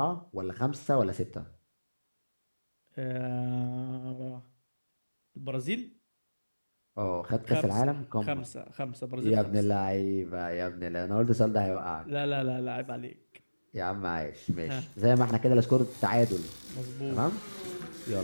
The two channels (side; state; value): both; inverted; correlation -1.00